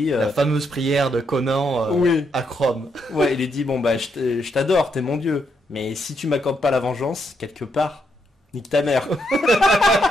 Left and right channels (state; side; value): normal; both; correlation 0.78